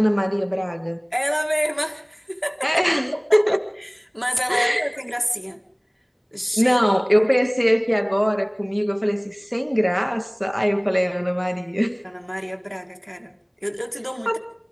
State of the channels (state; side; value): identical; both; correlation 1.00